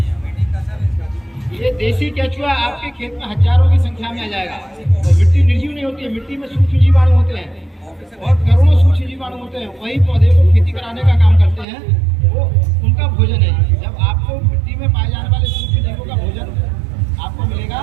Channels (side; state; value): left; drops out; at 11.7 s